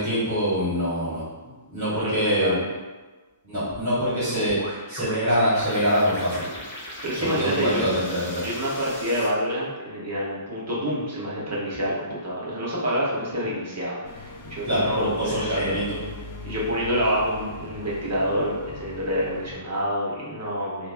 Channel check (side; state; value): both; inverted; correlation -0.45